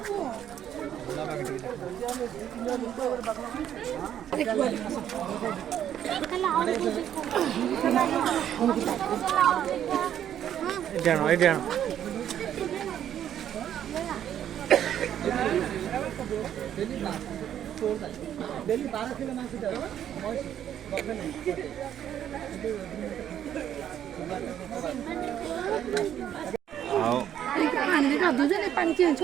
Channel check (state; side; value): quieter; left; 10.2 dB